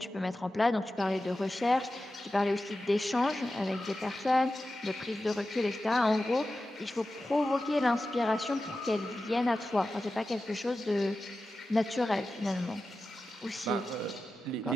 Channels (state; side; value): normal; both; correlation 0.93